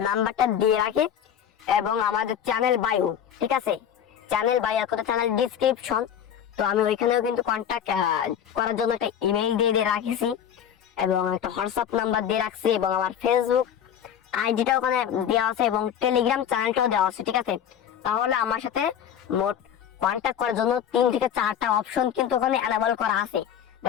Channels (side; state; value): right; quieter; 9.1 dB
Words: নাম্বারটা দিয়ে রাখি এবং আমাদের চ্যানেল বায়ো, ঠিক আছে? চ্যানেল বায়ো একটা চ্যানেল ডিসক্রিপশন, তো আমি ওইখানেও কিন্তু কন্ট্যাক্ট করার জন্য একটা ইমেইল দিয়ে রাখছি এবং একটা হোয়াটসঅ্যাপ নাম্বার দিয়ে রাখছি এবং আমার ফেসবুক আইডিটা ওখানে দেওয়া আছে এবং টেলিগ্রাম চ্যানেলটাও দেওয়া আছে, ঠিক আছে? তাহলে আমার সাথে মোট কন্ট্যাক্ট করার জন্য 3 থেকে 4টা অপশন কিন্তু ওখানে অ্যাভেলেবল করা আছে।